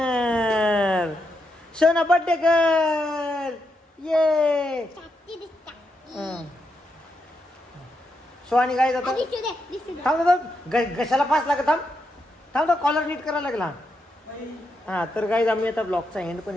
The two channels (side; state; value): both; normal; correlation 0.83